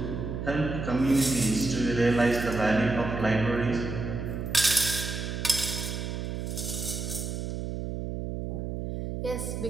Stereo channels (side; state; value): right; noise; hum, 4 dB below the sound